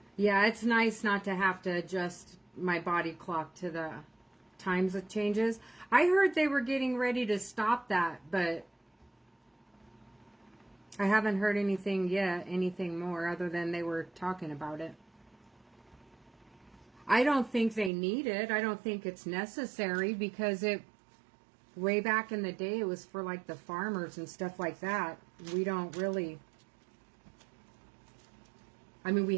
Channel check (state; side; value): drops out; left; at 17.9 s